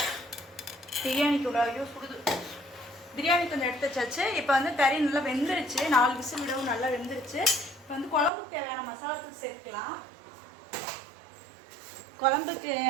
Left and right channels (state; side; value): drops out; left; at 8.3 s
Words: பிரியாணிக்கு ஐயோ சுடுது. பிரியாணி கொஞ்சம் எடுத்து வச்சாச்சு. இப்போ வந்து கறி நல்லா வெந்துருச்சு. 4 விசில் விடவும் நல்லா வெந்துருச்சு. இப்போ வந்து குழம்புக்கு தேவையான மசாலாத்தூள் சேர்க்கலாம். குழம்புக்கு